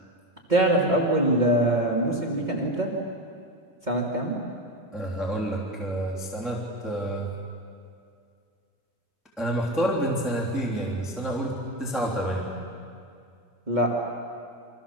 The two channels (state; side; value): normal; both; correlation 0.19